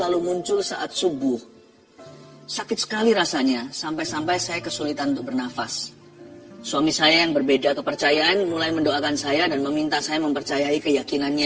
muncul saat subuh. Sakit sekali rasanya, sampai-sampai saya kesulitan untuk bernafas. Suami saya yang berbeda kepercayaan mulai mendoakan saya dan meminta saya mempercayai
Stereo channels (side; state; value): both; identical; correlation 1.00